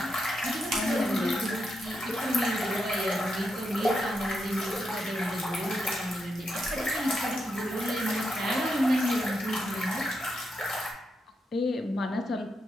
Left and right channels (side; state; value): both; normal; correlation 0.84